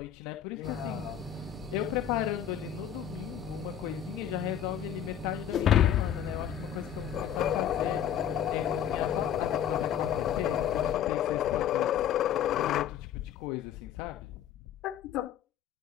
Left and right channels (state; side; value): quieter; right; 9.7 dB